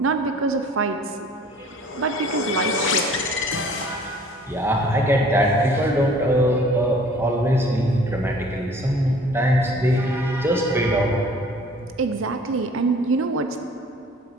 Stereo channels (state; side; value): normal; both; correlation 0.51